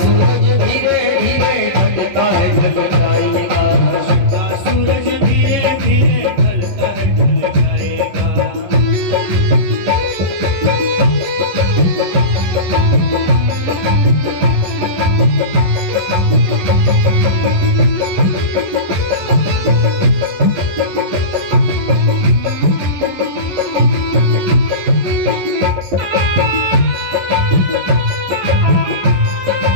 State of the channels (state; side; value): late; left; 11 ms